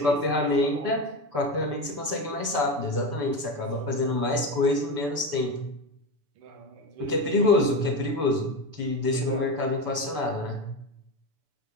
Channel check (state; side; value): late; left; 6.9 ms